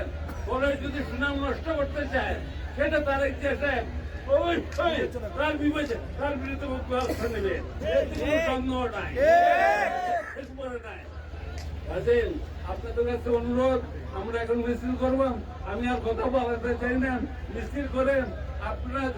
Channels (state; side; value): identical; both; correlation 1.00